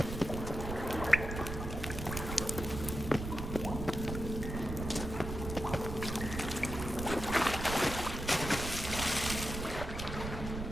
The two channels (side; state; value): right; noise; rumble, 6 dB below the sound